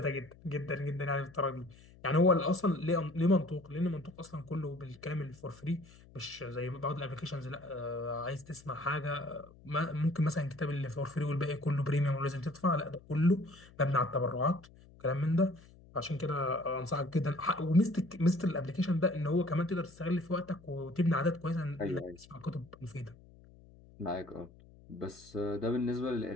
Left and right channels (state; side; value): noise; left; hum, 23 dB below the sound